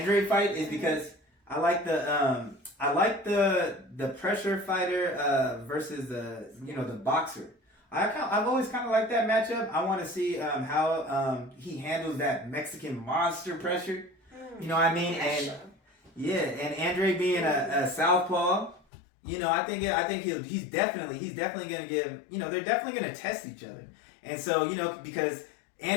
fight is because I like the pressure fighter versus the boxer. I've always kind of liked that matchup. I want to see how he handles that Mexican monster pressure. You know what I mean? Yeah, and Andre being a southpaw, you know, I think he's definitely going to give, you know, they're definitely going to test each other. And so, you know, because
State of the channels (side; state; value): right; drops out; at 18.8 s